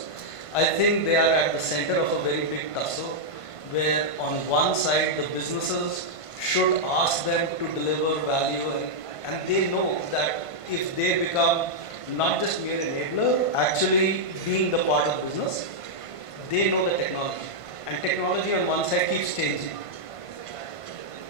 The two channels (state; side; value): late; right; 1.5 ms